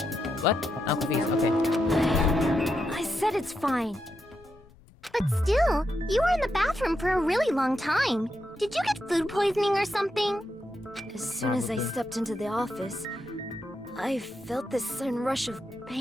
What? I'm confused. Okay. I said it's fine. But still, you were in the bathroom for a really long time. Did you get food poisoning or something? As soon as I stepped into the office, I felt this sudden rush of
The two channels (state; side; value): normal; both; correlation 0.84